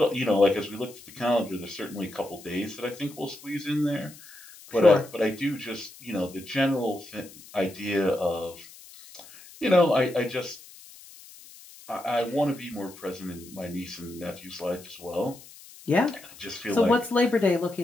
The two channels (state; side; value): noise; left; hiss, 20 dB below the sound